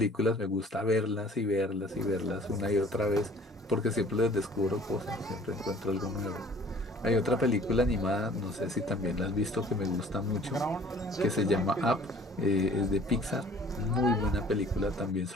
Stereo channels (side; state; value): both; normal; correlation 0.52